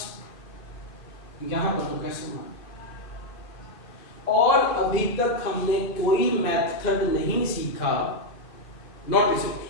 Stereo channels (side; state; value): right; late; 2.4 ms